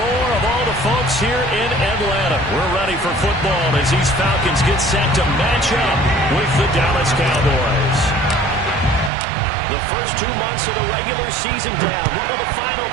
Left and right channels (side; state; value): left; drops out; at 9.1 s